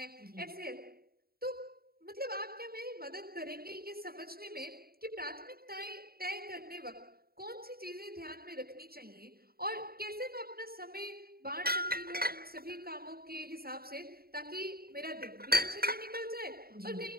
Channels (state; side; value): late; left; 0.44 ms